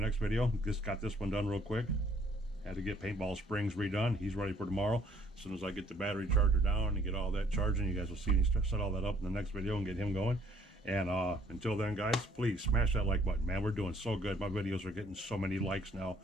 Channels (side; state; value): both; normal; correlation 0.63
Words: next video. Just got this one done real quick. Had to get Paintball Springs redone. He's ready for tomorrow. As soon as I get the battery charger down and get all that charging, you guys will see me set all that up in the next video and get him going. And until then, guys, please smash that like button, man. We're doing so good. My videos are getting so many likes now,